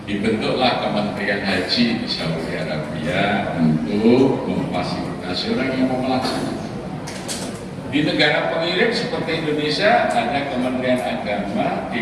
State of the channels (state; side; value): identical; both; correlation 1.00